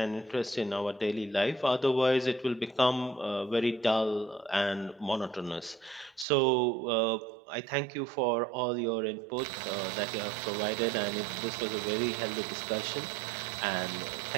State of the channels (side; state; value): left; drops out; at 6.2 s